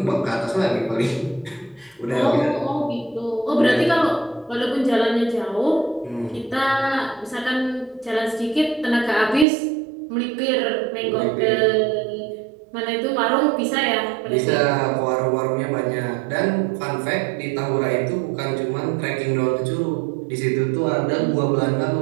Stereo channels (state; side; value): drops out; left; at 9.5 s